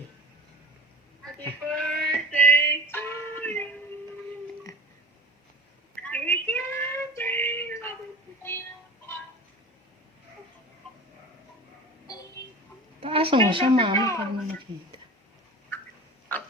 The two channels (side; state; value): both; normal; correlation 0.36